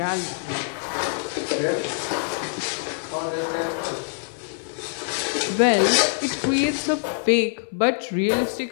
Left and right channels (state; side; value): silent; right; 58 dB below the other